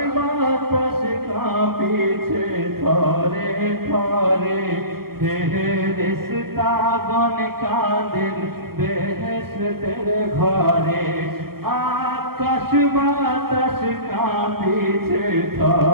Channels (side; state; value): left; late; 0.94 ms